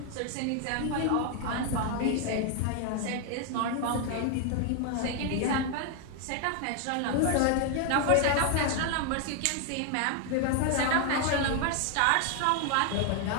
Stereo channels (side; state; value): both; different; correlation 0.01